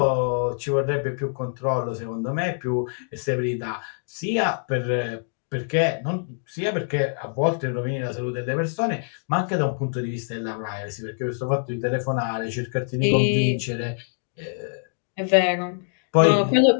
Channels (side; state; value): right; silent; digital silence